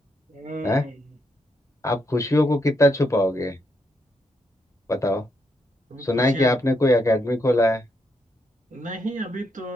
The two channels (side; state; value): both; normal; correlation 0.78